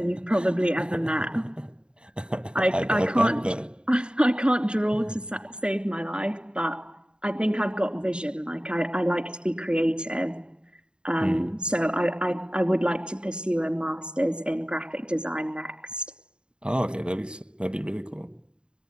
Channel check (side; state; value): left; late; 0.051 ms